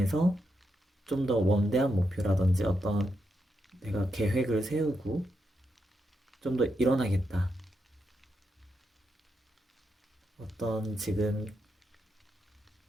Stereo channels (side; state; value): both; normal; correlation 0.84